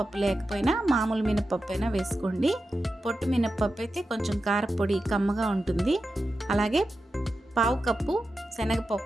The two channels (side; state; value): both; normal; correlation 0.91